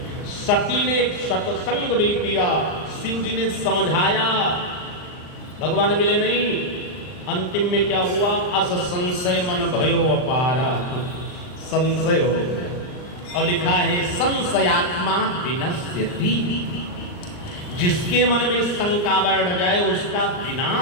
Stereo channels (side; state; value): right; late; 39 ms